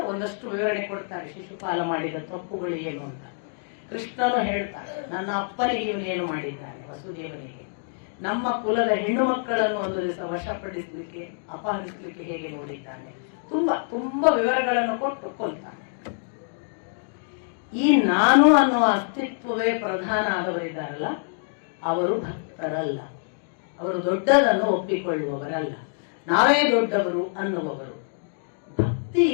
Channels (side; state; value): right; silent; digital silence